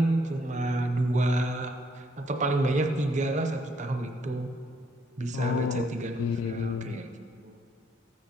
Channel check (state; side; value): normal; both; correlation 0.70